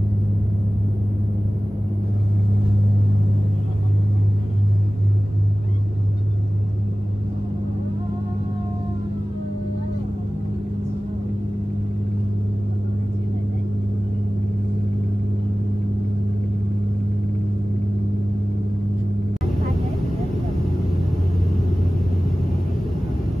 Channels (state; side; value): normal; both; correlation 0.97